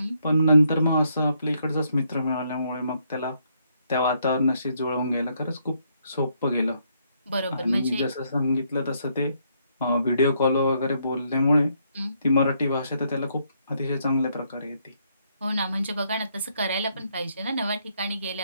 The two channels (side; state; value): both; inverted; correlation -0.73